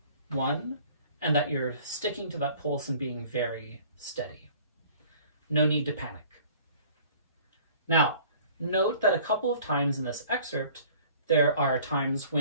1, and that you're sticking to that pulse and being very steady. No need to panic. Now, note that a couple of times in this excerpt, there are times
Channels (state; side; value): inverted; both; correlation -0.51